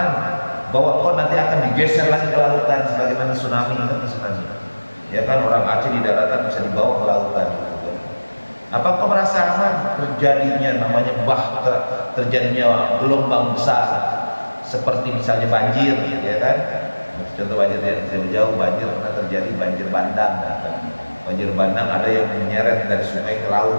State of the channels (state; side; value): inverted; both; correlation -1.00